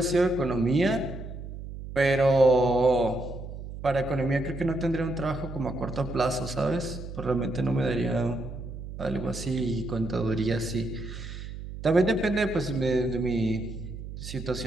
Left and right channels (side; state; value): right; noise; hum, 10 dB below the sound